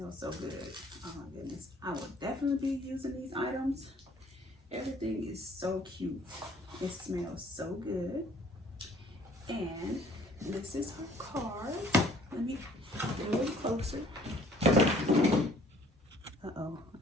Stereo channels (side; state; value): both; normal; correlation 0.57